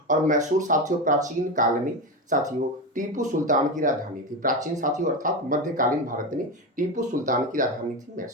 और मैसूर साथियों प्राचीन काल में साथियों टीपू सुल्तान की राजधानी थी। प्राचीन साथियों अर्थात मध्यकालीन भारत में टीपू सुल्तान की राजधानी थी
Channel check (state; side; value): normal; both; correlation 0.17